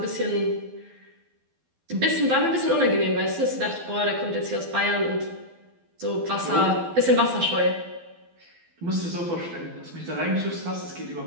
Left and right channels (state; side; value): late; left; 12 ms